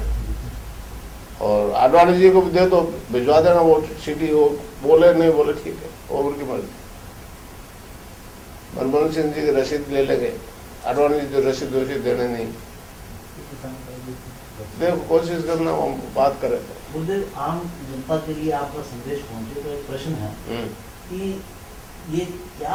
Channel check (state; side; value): identical; both; correlation 1.00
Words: और आडवाणी जी को भी दे दो, भिजवा देना वो सीडी। वो बोले नहीं बोले ठीक है, वो उनकी मर्जी। मनमोहन सिंह जी की रसीद ले लेंगे, आडवाणी जी जो रसीद देने नहीं। देखो कोशिश करना, हम बात करें। गुरुदेव, आम जनता के लिए आपका संदेश पहुंचे तो एक प्रश्न है कि ये